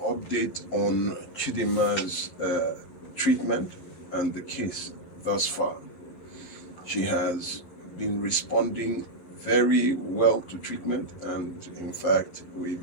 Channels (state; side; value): late; right; 11 ms